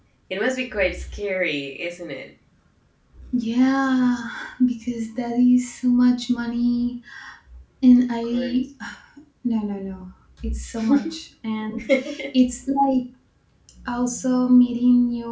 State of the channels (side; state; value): both; identical; correlation 1.00